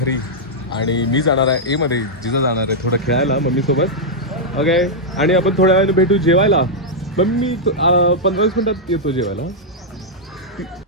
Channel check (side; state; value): both; normal; correlation -0.05